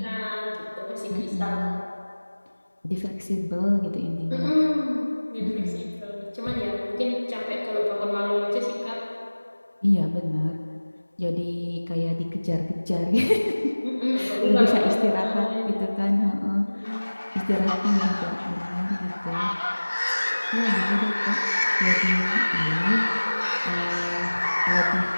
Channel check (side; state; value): both; inverted; correlation -1.00